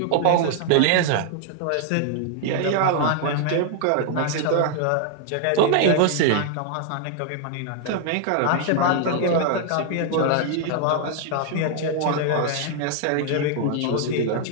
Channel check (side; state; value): both; different; correlation 0.00